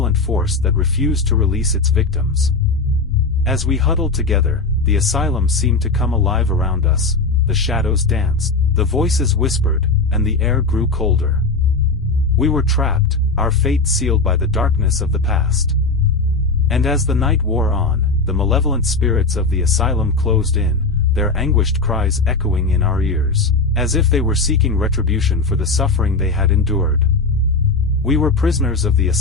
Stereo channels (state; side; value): quieter; right; 3.7 dB